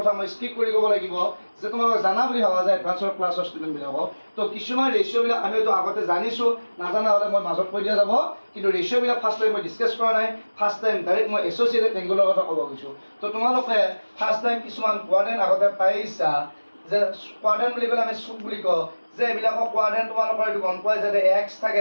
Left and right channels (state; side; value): inverted; both; correlation -1.00